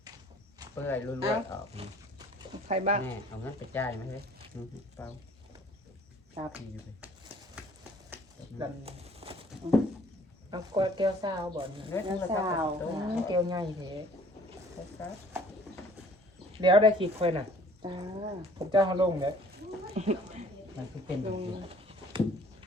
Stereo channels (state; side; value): normal; both; correlation 0.55